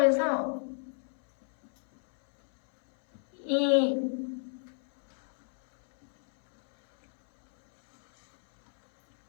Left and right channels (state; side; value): silent; right; 58 dB below the other